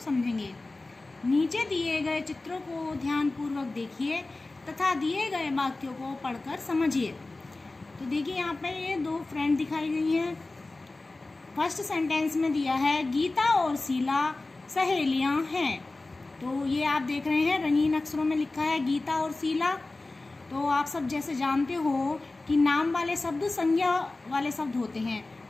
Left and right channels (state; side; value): quieter; right; 3.2 dB